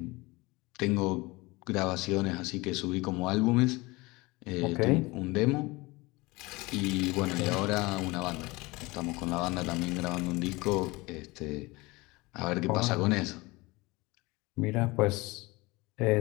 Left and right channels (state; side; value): quieter; right; 23.0 dB